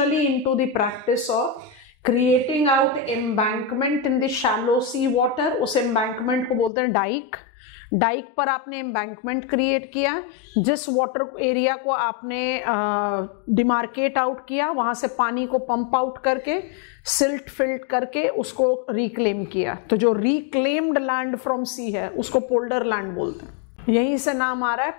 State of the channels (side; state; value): right; drops out; at 6.7 s